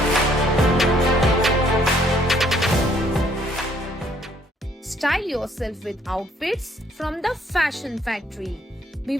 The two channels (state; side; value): normal; both; correlation 0.65